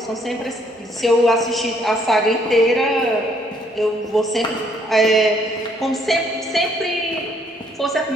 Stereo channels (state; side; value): normal; both; correlation 0.67